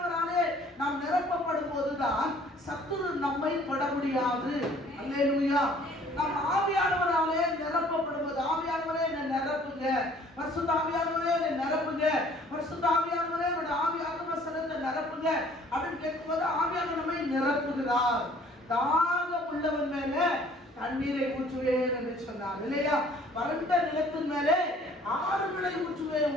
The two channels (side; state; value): both; normal; correlation 0.56